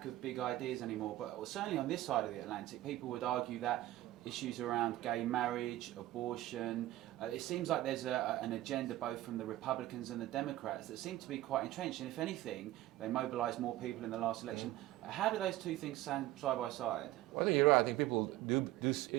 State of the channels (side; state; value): left; quieter; 15.6 dB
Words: of big ideas anymore, but certainly on this side of the Atlantic, people would argue that issues around gay marriage, abortion, it seems like there's an agenda both from the Republicans and the Democrats that seem to be quite entrenched, and if anything, they mobilised more people in the last election. How do those two things stand side by side? Well, I think you're right. I think people